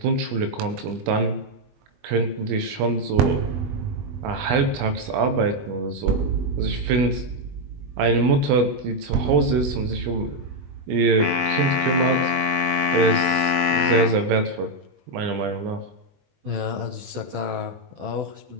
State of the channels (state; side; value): late; left; 20 ms